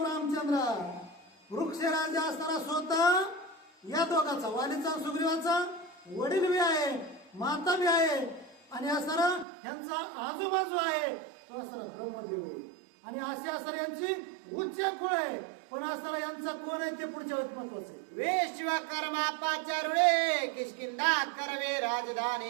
रामचंद्र वृक्ष राजा असताना स्वतः या दोघांचा वालीचा सुग्रीवाचा वडील बी आहे माता बी आहे आणि असताना ह्यांचा आजूबाजू आहे तो असताना ब्रह्मदेव आहे आणि असे असताना यांची उच्च कुळ आहे. पण असताना यांचा कोण आहे ते पुढच्या वेळेत महत्वाचं आहे. विश्वकर्मा पाचारुळे किष्किंधा करवे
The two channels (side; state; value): left; drops out; at 9.5 s